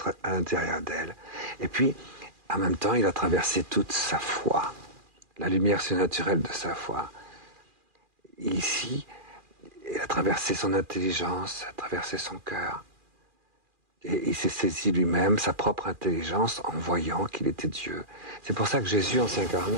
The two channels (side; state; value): left; late; 2.4 ms